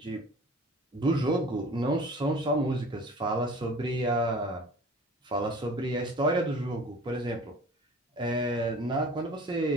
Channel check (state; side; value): normal; both; correlation 0.44